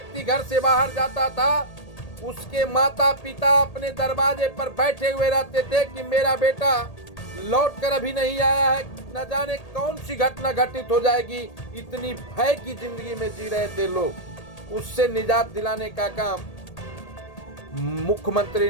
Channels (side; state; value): right; late; 1.8 ms